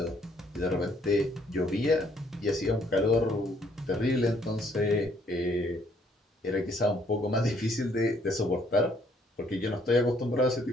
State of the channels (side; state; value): both; normal; correlation 0.66